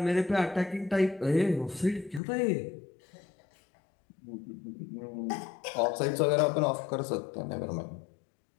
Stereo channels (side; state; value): right; drops out; at 2.2 s